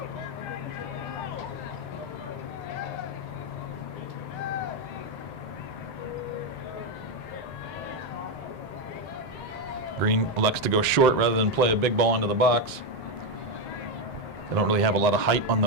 Green elects to go short rather than play a big ball into the box. They don't really have a lot of height on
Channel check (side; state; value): both; normal; correlation 0.08